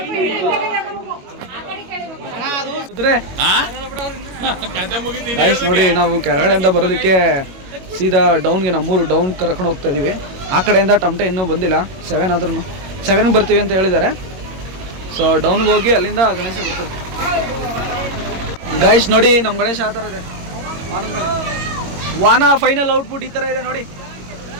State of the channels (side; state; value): left; late; 22 ms